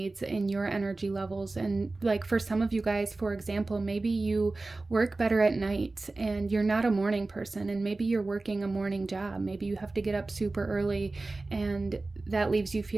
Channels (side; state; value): left; quieter; 3.3 dB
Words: and your energy levels. And like for some of you guys, for example, maybe you work better at night and you're not a morning person, and maybe you're working a morning job. Maybe you have to get up super early, and that leaves you